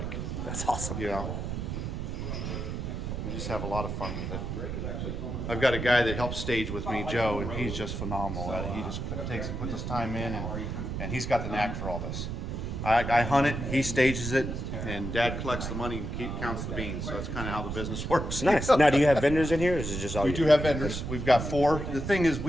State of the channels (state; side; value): noise; right; rumble, 4 dB below the sound